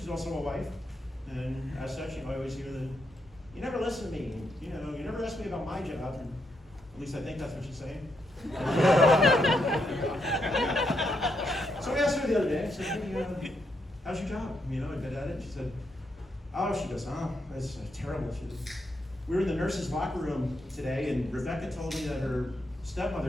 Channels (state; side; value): normal; both; correlation 0.80